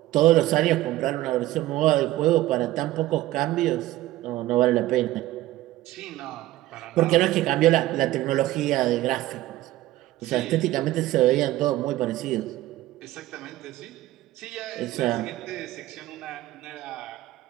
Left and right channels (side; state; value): left; quieter; 16.2 dB